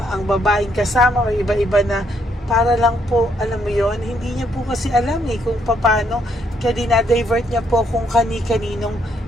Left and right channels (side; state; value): both; normal; correlation 0.72